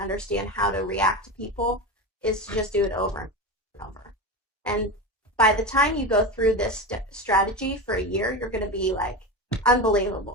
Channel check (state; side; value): normal; both; correlation 0.22